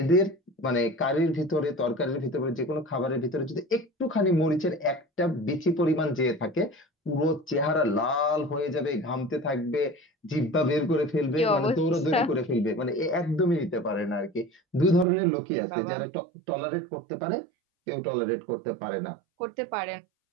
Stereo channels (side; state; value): left; drops out; at 15.1 s